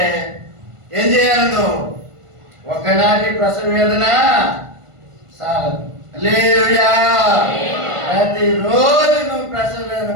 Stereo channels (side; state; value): left; late; 1.5 ms